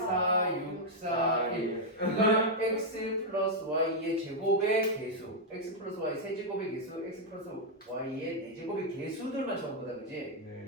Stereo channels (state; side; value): normal; both; correlation -0.03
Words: 6, 4, 1 이거는 x 플러스 y의 제곱의 개수 x 플러스 y 세제곱의 개수 x 플러스 y의 네제곱의 개수들만 적은 거다 그지?